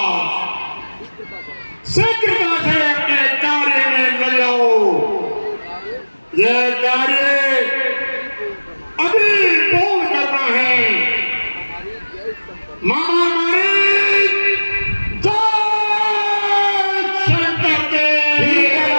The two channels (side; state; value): both; inverted; correlation -1.00